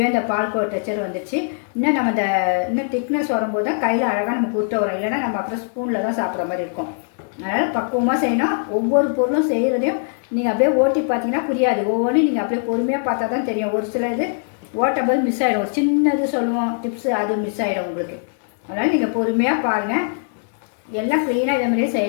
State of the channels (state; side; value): silent; right; digital silence